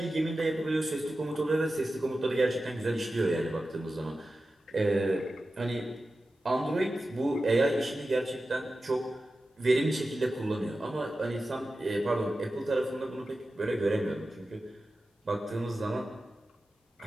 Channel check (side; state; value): both; normal; correlation 0.93